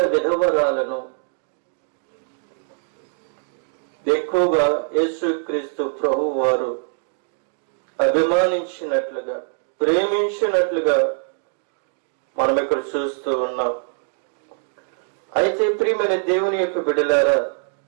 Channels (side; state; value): left; silent; digital silence